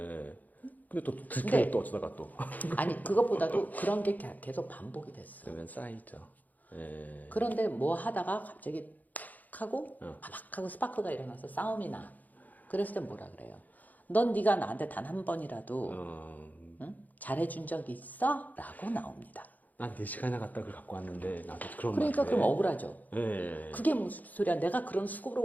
근데 또 근데- 들키면 또 어쩌다가 또. 아니 그것보다도 그런 게 계속 반복이 됐어. 그러면 쌓이죠. 예. 그런데 뭐 하다가 갑자기 탁 하고 어. 바박 하고 스파크가 일어나서 싸움이 나. 그랬을 땐 뭐라 그래요? 넌 네가 나한테 단 한 번이라도 응? 잘해준 적 있어? 라고 나옵니다. 난 4시간이나 갔다 그걸 갖고 왔는데 나도 그런 그러니까 말을 그럼 해. 억울하죠. 예. 그게 무슨 소리야? 내가 그런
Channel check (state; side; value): late; right; 0.081 ms